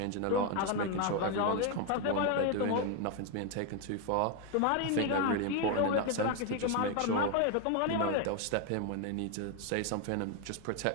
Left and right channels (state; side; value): different; both; correlation 0.01